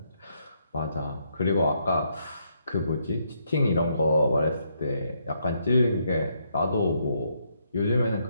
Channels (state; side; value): inverted; both; correlation -0.75